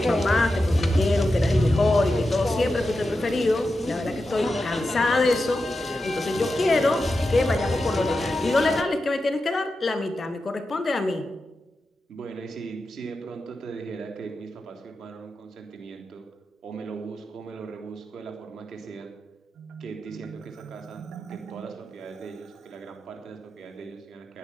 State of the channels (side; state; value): both; normal; correlation 0.90